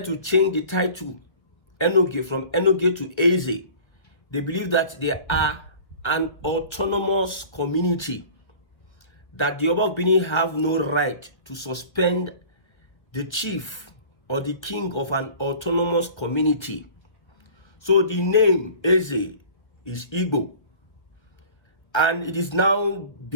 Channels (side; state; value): right; late; 1.5 ms